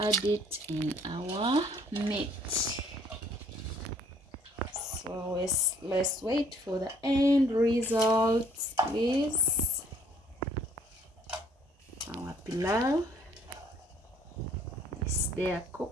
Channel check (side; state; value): both; normal; correlation 0.60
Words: it in our meat. So let's wait for the end results, please. Our pilau is there